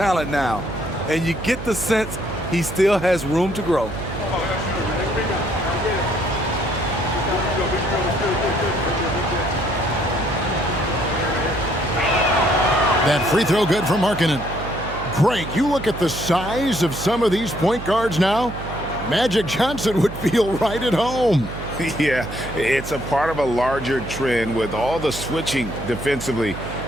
now. And you get the sense he still has room to grow. That free throw good for Markkanen. Greg, you look at the size of some of these point guards now. Magic Johnson would feel right at home. Yeah, it's a part of a larger trend with all the switching defensively.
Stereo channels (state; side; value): noise; right; hum, 10 dB below the sound